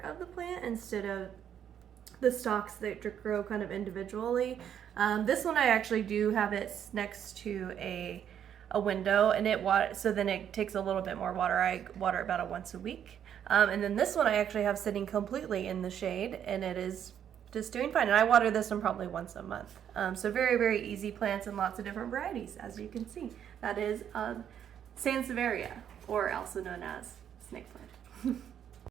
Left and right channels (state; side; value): quieter; left; 9.2 dB